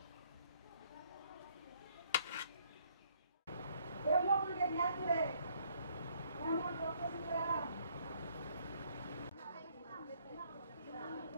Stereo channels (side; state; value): both; inverted; correlation -0.66